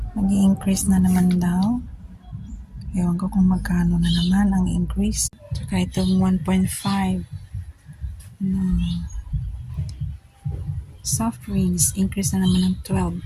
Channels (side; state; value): both; identical; correlation 1.00